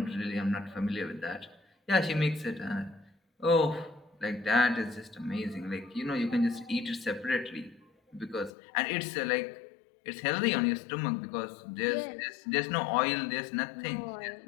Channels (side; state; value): right; drops out; at 8.5 s